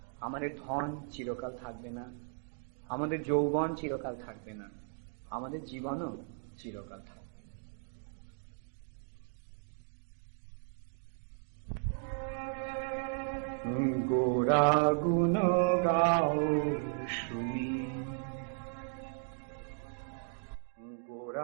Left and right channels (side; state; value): left; silent; digital silence